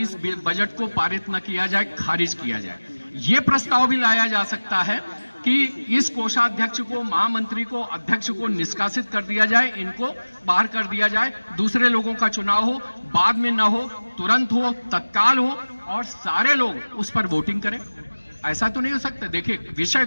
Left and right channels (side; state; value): both; inverted; correlation -1.00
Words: इस बजट को पारित न किया जाए, खारिज किया जाए। ये प्रस्ताव भी लाया जा सकता है कि इस कोषाध्यक्ष को, महामंत्री को, अध्यक्ष को निष्कासित कर दिया जाए, इनको बाहर कर दिया जाए, दूसरे लोगों का चुनाव हो, बाद में न हो, तुरंत हो, तत्काल हो और सारे लोग उस पर वोटिंग करें। ऐसा तो नहीं हो सकता। देखिए विषय